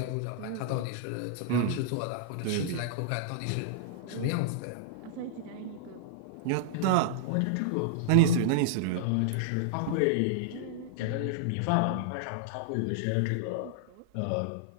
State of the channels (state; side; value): different; both; correlation -0.01